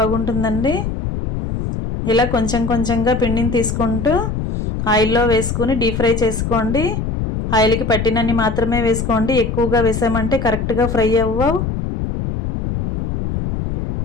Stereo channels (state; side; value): noise; left; rumble, 3 dB below the sound